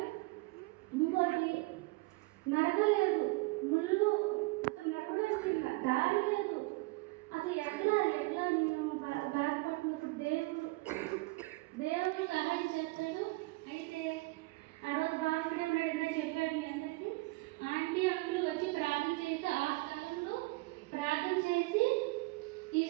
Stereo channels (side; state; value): left; quieter; 23.7 dB